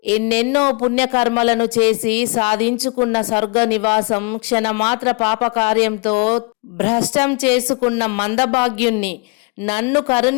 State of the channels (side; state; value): right; quieter; 31.2 dB